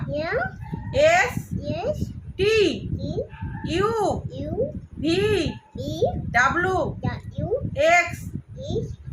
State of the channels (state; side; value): identical; both; correlation 1.00